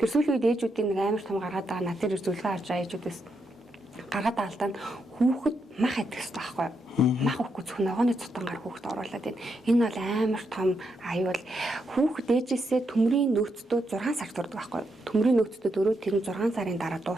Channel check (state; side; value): normal; both; correlation 0.81